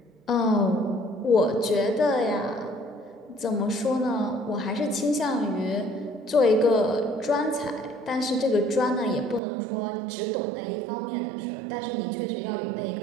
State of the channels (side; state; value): left; drops out; at 9.4 s